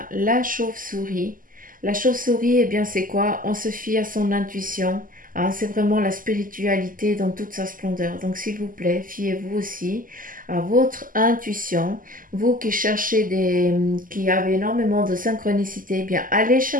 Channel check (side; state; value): left; late; 0.41 ms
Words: la chauve-souris. La chauve-souris, eh bien, c'est quoi? On se fie à son intuition. Hein, c'est vraiment la spiritualité dans toute sa splendeur. Donc, s'il vous plaît, fiez-vous aussi à votre intuition. Vous qui cherchez qui avez énormément de synchronicité, eh bien, allez